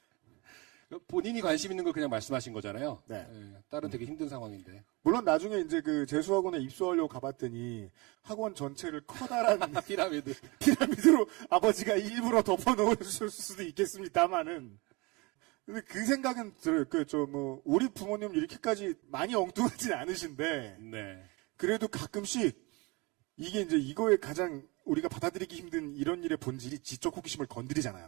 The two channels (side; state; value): left; quieter; 26.1 dB